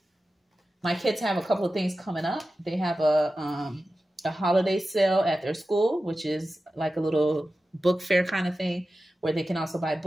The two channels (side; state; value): both; normal; correlation 0.94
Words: kids have a couple of things coming up. They have a holiday sale at their school, which is like a little book fair kind of thing, where they can also buy